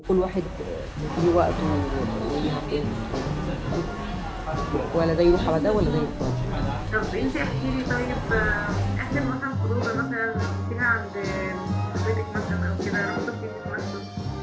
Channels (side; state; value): both; identical; correlation 1.00